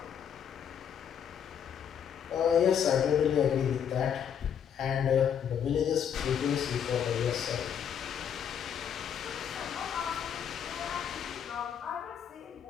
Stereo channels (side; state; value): right; quieter; 8.4 dB